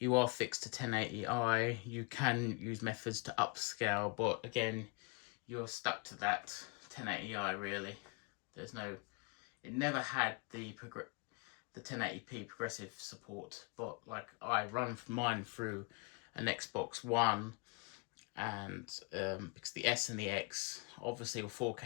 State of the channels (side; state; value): right; quieter; 30.8 dB